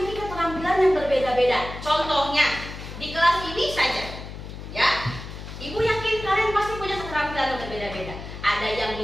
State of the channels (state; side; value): noise; left; hum, 11 dB below the sound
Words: keterampilan yang berbeda-beda. Contohnya di kelas ini saja, ya. Ibu yakin kalian pasti punya keterampilan yang berbeda-beda. Ada yang